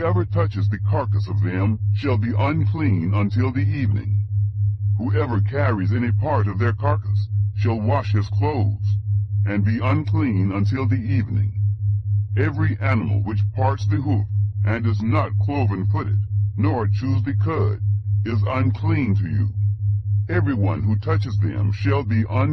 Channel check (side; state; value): both; identical; correlation 1.00